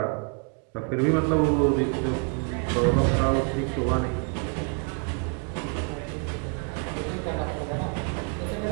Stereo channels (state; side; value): quieter; left; 37.5 dB